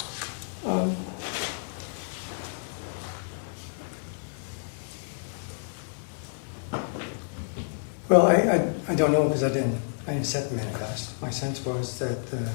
Well, I don't know because I didn't set the manifest. My sense was that the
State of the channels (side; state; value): right; silent; digital silence